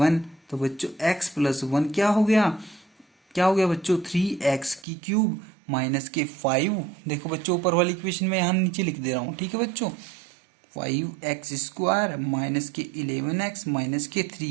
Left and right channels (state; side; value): drops out; left; at 4.9 s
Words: तो बच्चों x + 1 क्या हो गया, क्या हो गया बच्चों, 3x³ -5। देखो बच्चों ऊपर वाली इक्वेशन में यहाँ नीचे लिख दे रहा हूँ। ठीक है बच्चों, 5x² -11x